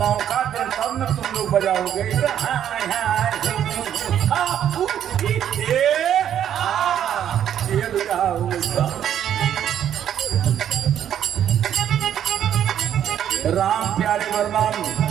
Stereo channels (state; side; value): quieter; left; 10.0 dB